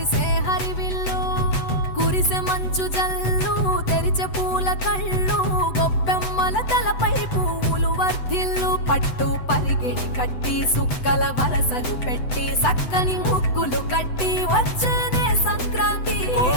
హరివిల్లు కురిసె మంచు జల్లు తెరిచే పూల కళ్ళు గొప్పెమ్మల తలపై పువ్వులు వర్ధిల్లు పట్టు పరిగిణి కట్టి సుక్కల వరసలు పెట్టి సక్కని ముగ్గులు కట్టి వచ్చేనే సంక్రాంతి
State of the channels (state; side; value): late; right; 7.9 ms